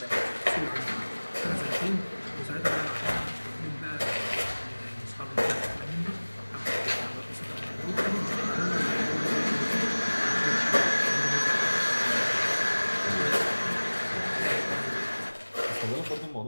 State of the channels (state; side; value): inverted; both; correlation -1.00